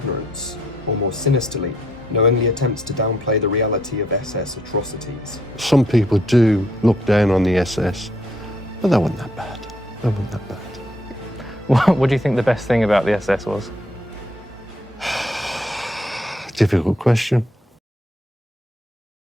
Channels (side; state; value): both; normal; correlation 0.70